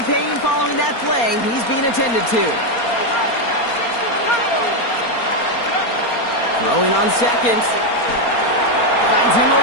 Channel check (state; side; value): late; right; 4.3 ms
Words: pain following that play. He's being attended to. Throwing on 2nd. Finds him